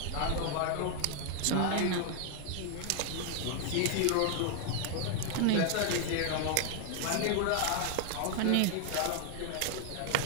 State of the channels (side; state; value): both; different; correlation 0.00